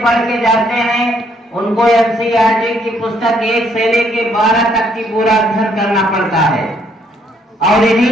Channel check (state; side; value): normal; both; correlation 0.69